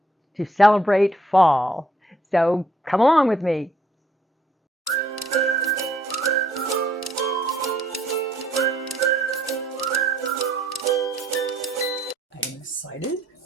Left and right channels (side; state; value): both; normal; correlation 0.67